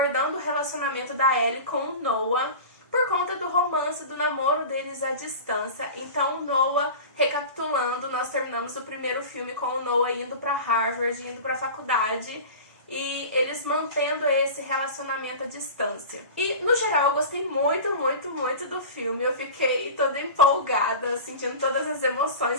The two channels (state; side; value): inverted; both; correlation -0.33